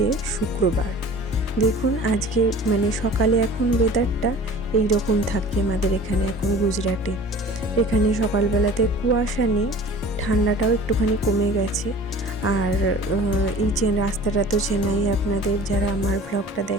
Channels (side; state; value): both; normal; correlation 0.43